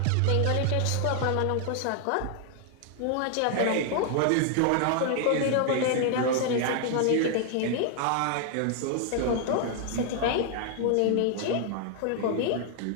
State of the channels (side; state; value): both; different; correlation 0.00